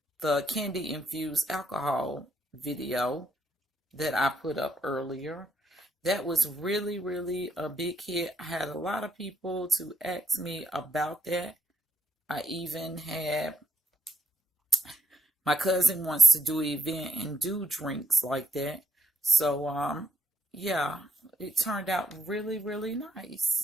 candy infused alcohol video that I put up earlier. That was really a big hit. I had a lot of people to ask me about that. I even had my cousin wants to do an event and do drinks like that. So yeah, it turned out really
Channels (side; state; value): both; normal; correlation 0.77